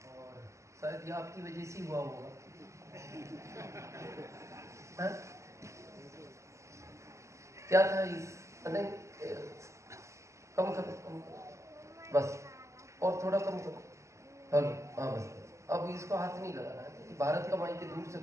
और शायद ये आपकी वजह से हुआ होगा। क्या था इस नहीं, कम करो, कम करो, बस और थोड़ा कम करो। हेलो, हाँ बस। अब इसको हाथ नहीं लगाना है क्योंकि भारत का माइक दूर से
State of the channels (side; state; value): left; late; 0.14 ms